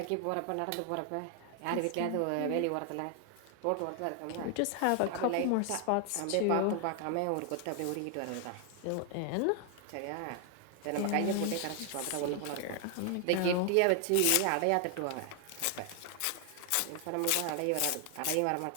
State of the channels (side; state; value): both; different; correlation 0.00